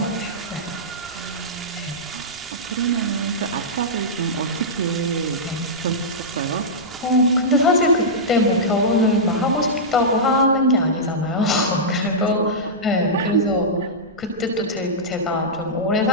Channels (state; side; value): noise; right; rumble, 27 dB below the sound